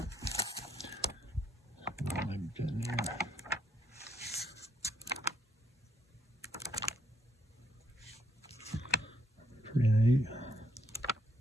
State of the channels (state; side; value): normal; both; correlation 0.72